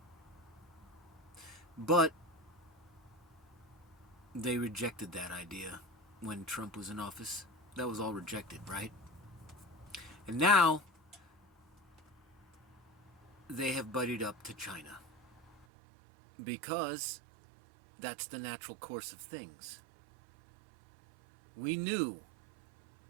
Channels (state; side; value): drops out; left; at 15.7 s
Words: But they rejected that idea when Trump was in office. That was all rejected, right? And now they have buddied up to China because that's the natural course of things. We knew